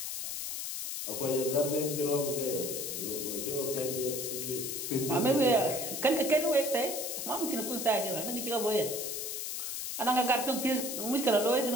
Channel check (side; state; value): left; noise; hiss, 4 dB below the sound